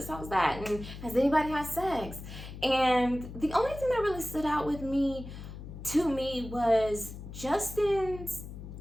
How was that? And has anybody had sex? And the only thing that really stood out with me, to me, was Justin's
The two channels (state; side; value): noise; left; hum, 11 dB below the sound